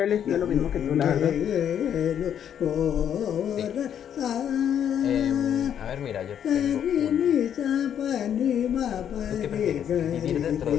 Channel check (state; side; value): quieter; right; 9.2 dB